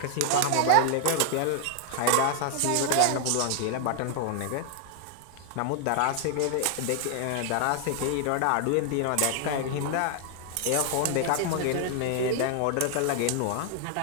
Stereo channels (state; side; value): different; both; correlation 0.00